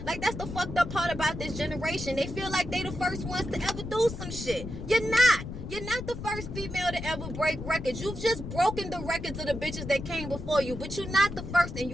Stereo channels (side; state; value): left; noise; rumble, 9 dB below the sound